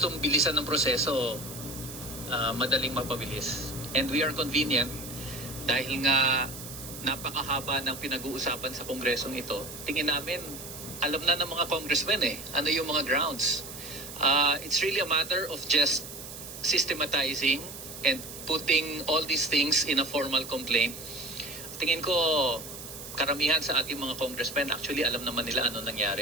mong bilisan ng proseso, madaling mapabilis. And we are convenient dahil nga napakahaba ng pinag-uusapan sa Kongresong ito. Tingin namin, alam na ng mga congressmen ano yung mga grounds. It's really a matter of just systematizing and putting all these things in a formal complaint. Tingin ko, karamihan sa ating mga congressmen, actually alam naman nila ano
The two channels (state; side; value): noise; right; hiss, 11 dB below the sound